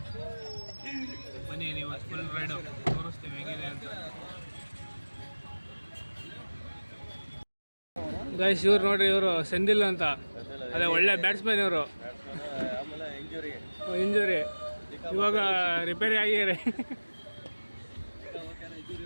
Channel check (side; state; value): both; inverted; correlation -1.00